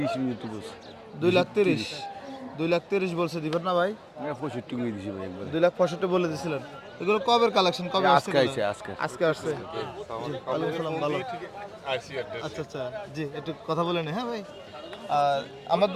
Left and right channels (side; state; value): both; identical; correlation 1.00